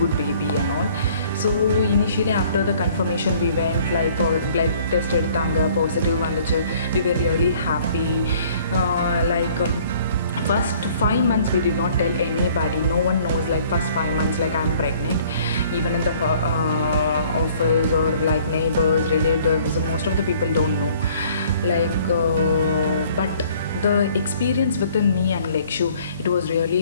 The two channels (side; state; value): both; inverted; correlation -0.56